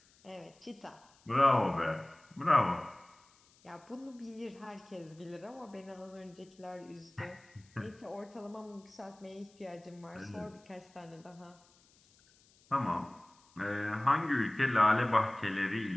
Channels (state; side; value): noise; left; hiss, 30 dB below the sound